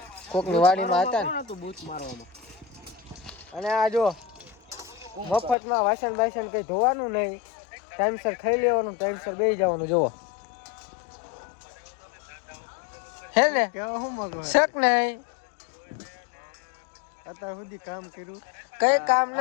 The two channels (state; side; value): drops out; right; at 5.6 s